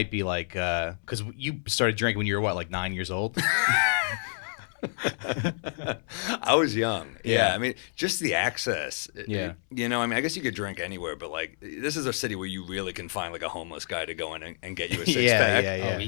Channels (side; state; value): right; silent; 59 dB below the other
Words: be like, because you started drinking when you were what, like 9 years old? I was young. Yeah. I mean, just the access. Yeah. I mean, I guess you could drink anywhere, but like, this is a city where you really can find like a homeless guy to go in and get you a six pack. Oh,